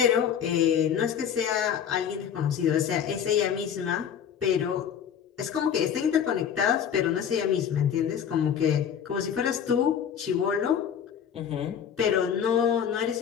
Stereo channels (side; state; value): right; quieter; 8.4 dB